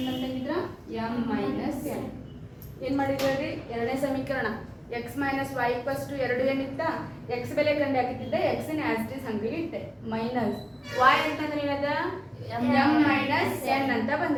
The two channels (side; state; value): both; identical; correlation 1.00